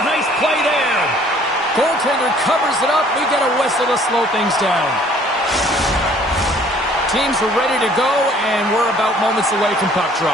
Nice play there. Goaltender covers it up. We get a whistle to slow things down. Teams are ready to go, and we're about moments away from puck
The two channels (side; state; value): both; normal; correlation 0.57